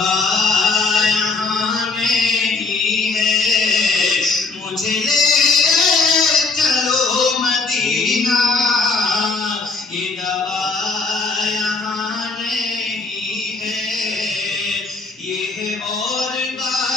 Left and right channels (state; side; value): quieter; right; 3.9 dB